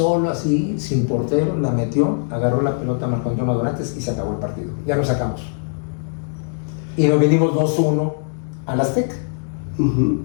así, sin portero, la metió, agarró la pelota a Marco Antonio Dorantes y se acabó el partido. Ya lo sacamos. Y nos vinimos 2-1 al Azteca.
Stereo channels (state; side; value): silent; right; digital silence